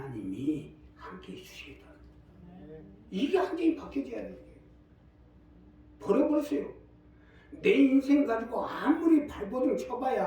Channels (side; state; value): both; identical; correlation 1.00